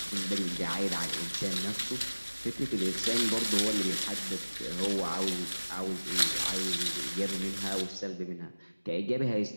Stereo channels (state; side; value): inverted; both; correlation -1.00